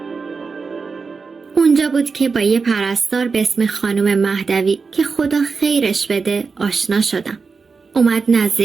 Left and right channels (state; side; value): quieter; left; 4.8 dB